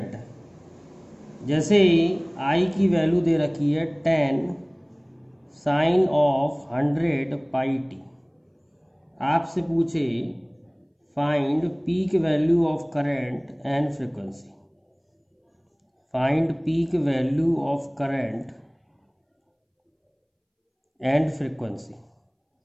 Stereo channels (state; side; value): identical; both; correlation 1.00